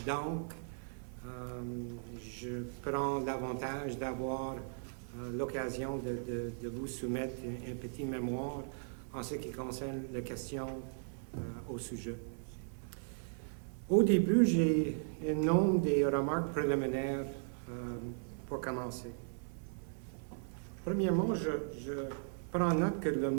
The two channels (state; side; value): silent; left; 53 dB below the other